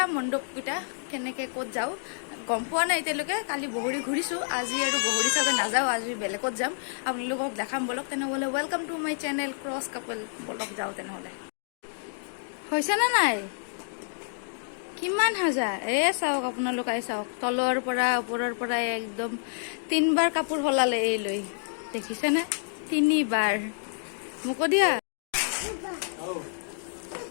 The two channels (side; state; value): right; silent; digital silence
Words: মণ্ডপকেইটা কেনেকৈ ক'ত যাওঁ। গম পোৱা নাই এতিয়ালৈকে, কালি বগৰী ঘূৰিছোঁ, আজি আৰু বগৰী চাগে নাযাওঁ, আজি বেলেগত যাম। আপোনালোকক দেখাম বলক। তেনেহ'লে welcome to my channel cross couple. বলক যাওঁ তেনেহ'লে। হৈছেনে নাই? কিমান সাজা চাওক, আপোনালোকে চাওক, তলৰ পৰা ওপৰৰ পৰা একদম 3বাৰ কাপোৰ সলালে এই লৈ, দেখিছেনে? 3বাৰ। মোকো দিয়া।